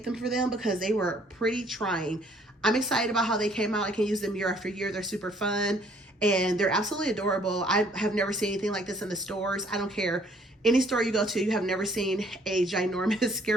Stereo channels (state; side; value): normal; both; correlation 0.61